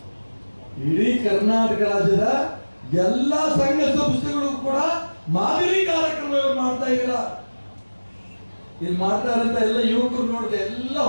ಇಡೀ ಕರ್ನಾಟಕ ರಾಜ್ಯದ ಎಲ್ಲಾ ಸಂಘ ಸಂಸ್ಥೆಗಳು ಕೂಡ ಮಾದರಿ ಕಾರ್ಯಕ್ರಮ ಇವ್ರು ಮಾಡ್ತಾ ಇದ್ದೀರ. ಇಲ್ಲಿ ಮಾಡ್ತಾ ಇರಂತ ಎಲ್ಲ ಯುವಕರು ನೋಡಿದೆ, ಎಲ್ಲ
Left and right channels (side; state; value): both; inverted; correlation -1.00